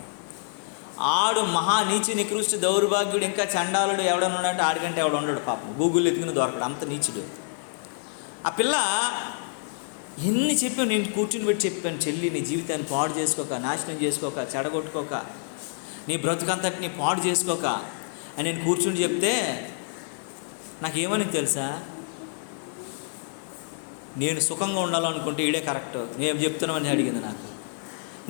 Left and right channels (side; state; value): right; silent; 60 dB below the other